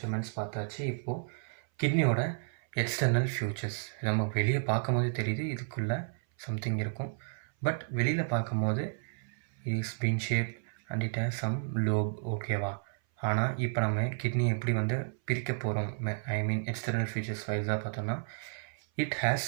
பார்த்தாச்சு. இப்போது கிட்னியோட எக்ஸ்டர்னல் ஃபியூச்சர்ஸ் நம்ம வெளியே பார்க்கும் போது தெரியுது இதுக்குள்ளே சம்திங் இருக்கும், பட் வெளியில் பார்க்கும் போது is bean shape and it has some lobe. ஓகேவா? ஆனால் இப்போ நம்ம கிட்னி எப்படி வந்து பிரிக்க போகிறோம், எக்ஸ்டர்னல் ஃபியூச்சர்ஸ் வைஸாக பார்த்தோம்னா it has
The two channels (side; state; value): left; silent; 56 dB below the other